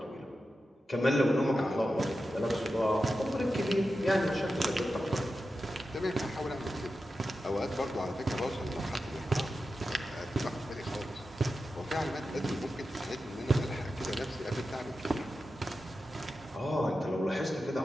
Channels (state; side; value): normal; both; correlation 0.91